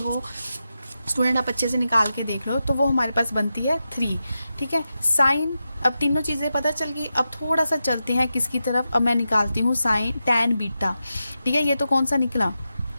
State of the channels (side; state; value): both; inverted; correlation -0.90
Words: स्टूडेंट, आप अच्छे से निकाल के देख लो, तो वो हमारे पास बनती है 3। ठीक है, साइन, अब तीनों चीज़ें पता चल गई। अब थोड़ा सा चलते हैं किसकी तरफ, अब मैं निकालती हूँ साइन tan बीटा। ठीक है, ये तो कौन सा निकला,